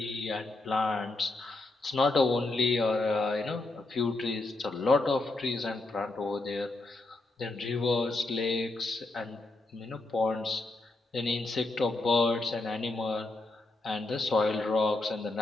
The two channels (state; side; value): quieter; right; 3.1 dB